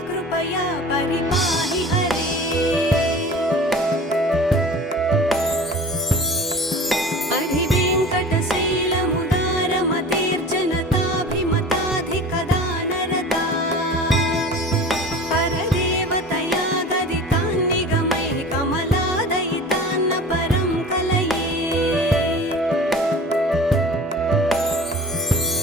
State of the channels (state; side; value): normal; both; correlation 0.39